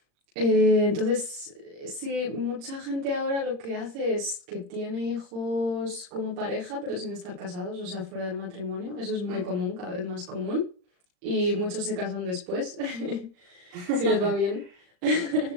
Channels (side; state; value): left; late; 40 ms